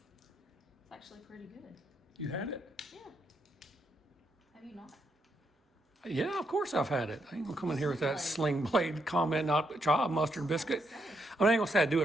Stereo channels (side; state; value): both; normal; correlation 0.79